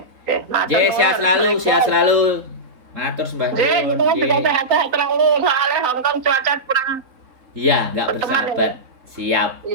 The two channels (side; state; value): left; late; 3.7 ms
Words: Sehat selalu. Matur sembah nuwun. Sehat terlalu, soalnya Hong Kong cuaca kurang. Iya, nggak bersahabat. Siap.